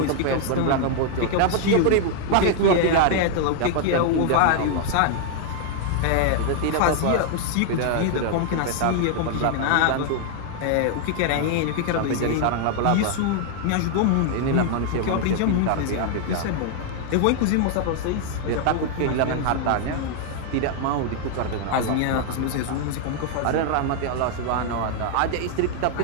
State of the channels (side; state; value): both; different; correlation 0.00